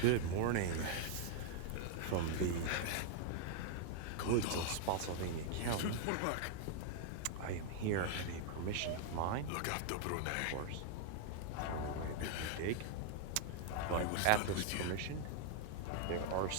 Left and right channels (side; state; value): both; different; correlation -0.01